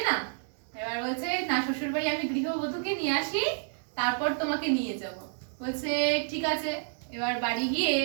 না? এবার বলছে না, শ্বশুর বাড়ি আমি গৃহবধূকে নিয়ে আসি, তারপর তোমাকে নিয়ে যাব। বলছে ঠিক আছে। এবার বাড়ি গিয়ে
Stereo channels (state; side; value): silent; left; 58 dB below the other